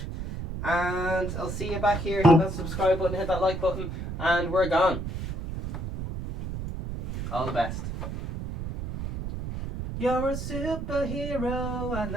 And I'll see you back here. Hit that subscribe button, hit that like button, and we're gone. All the best. You're a superhero and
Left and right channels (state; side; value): noise; right; rumble, 6 dB below the sound